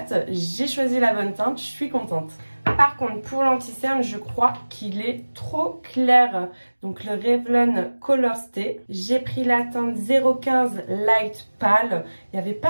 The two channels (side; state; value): both; inverted; correlation -1.00